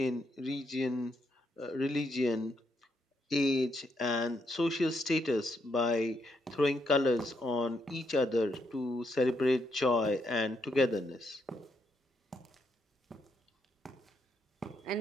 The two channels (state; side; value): normal; both; correlation 0.78